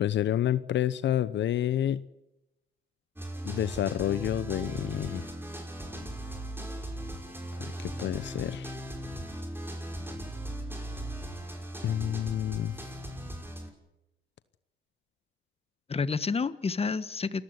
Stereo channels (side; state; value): right; quieter; 6.8 dB